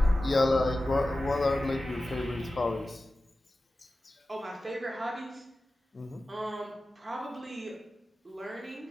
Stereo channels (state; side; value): normal; both; correlation 0.95